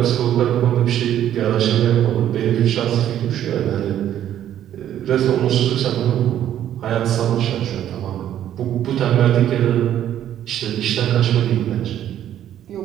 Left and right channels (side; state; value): left; quieter; 11.1 dB